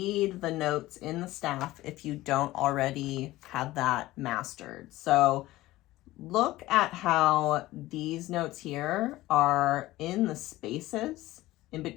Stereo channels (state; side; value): quieter; right; 17.2 dB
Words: the notes in the staff if you don't already have that mastered. So look at how these notes here are in the spaces in